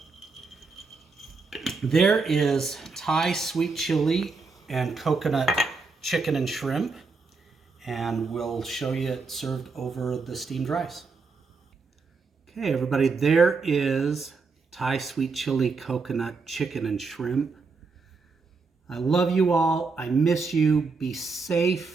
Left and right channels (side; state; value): left; quieter; 4.4 dB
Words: there is Thai sweet chili and coconut chicken and shrimp. And we'll show you it served over the steamed rice. Okay, everybody, there is Thai sweet chili, coconut, chicken, and shrimp. I love you all. I miss you. Be